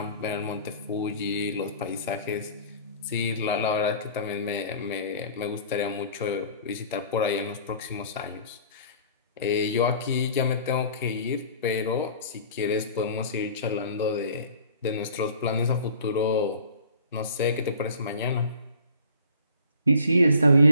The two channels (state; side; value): inverted; both; correlation -0.48